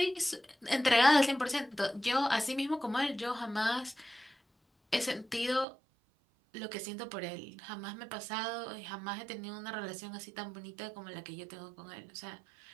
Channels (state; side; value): drops out; left; at 5.7 s